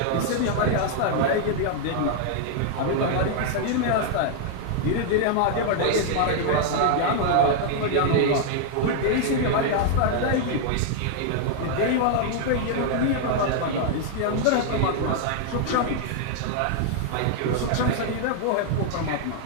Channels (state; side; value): different; both; correlation 0.00